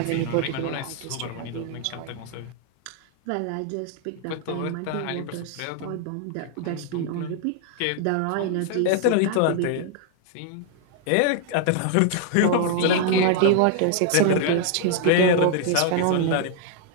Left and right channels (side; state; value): both; different; correlation 0.00